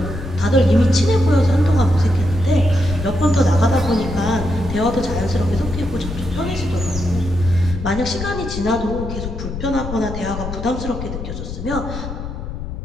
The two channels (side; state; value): left; noise; rumble, 7 dB below the sound